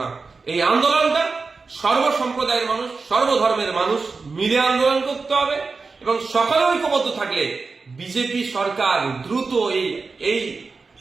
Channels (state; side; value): quieter; left; 4.3 dB